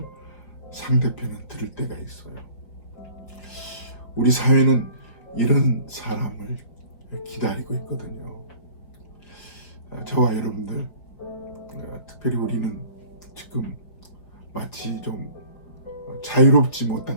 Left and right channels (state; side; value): late; right; 4.9 ms